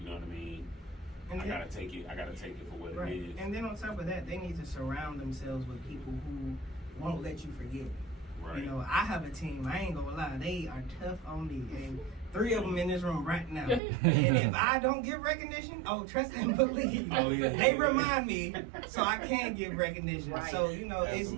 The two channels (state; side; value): drops out; left; at 13.8 s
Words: You know what I mean? And I gotta take it for what it is. And then on top of that, they need to surround themselves with people who won't let you forget. Right. You know, I have a team. I ain't gonna lie, they are tough on me, and 3 of them in this room right now. And if I don't give recognition, trust and believe. They remind me, so I can give recognition. Right. So you know,